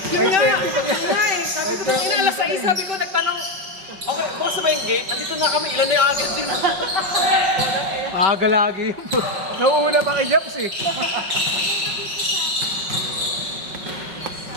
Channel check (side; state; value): left; late; 5.4 ms